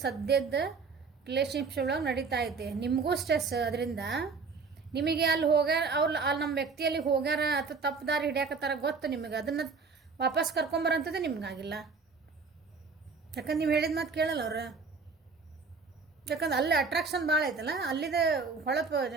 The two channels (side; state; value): left; quieter; 4.8 dB